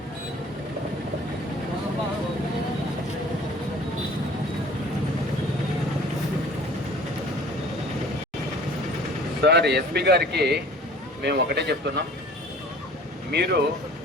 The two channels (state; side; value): normal; both; correlation 0.48